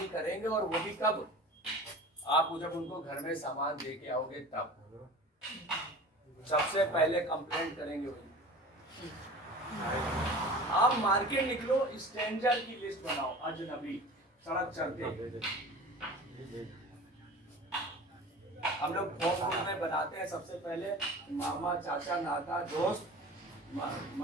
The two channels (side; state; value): both; normal; correlation 0.38